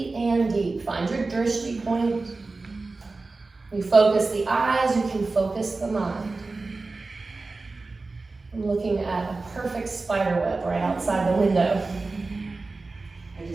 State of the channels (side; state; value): left; quieter; 3.6 dB